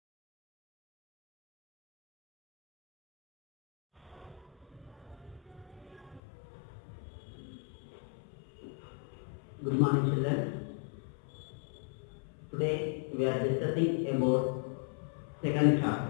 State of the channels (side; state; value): right; drops out; at 6.2 s